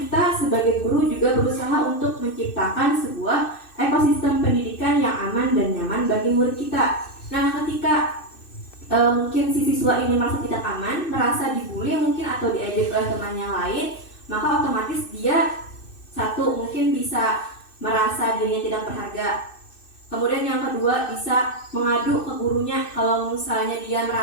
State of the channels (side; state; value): right; late; 2.6 ms